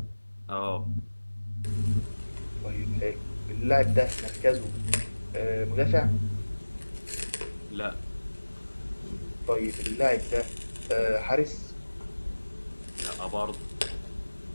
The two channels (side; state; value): both; inverted; correlation -1.00